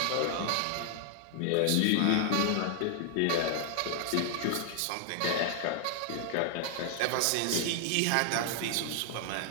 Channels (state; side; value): different; both; correlation 0.00